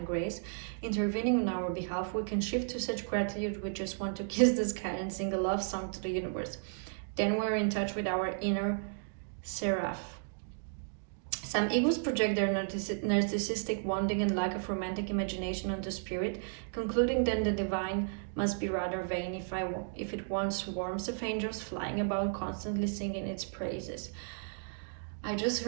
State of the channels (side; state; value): left; silent; digital silence